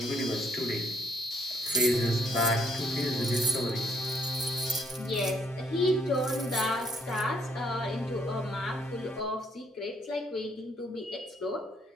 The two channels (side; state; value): both; normal; correlation 0.69